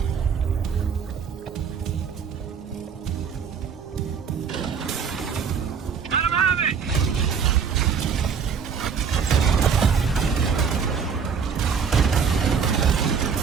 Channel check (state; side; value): quieter; left; 6.5 dB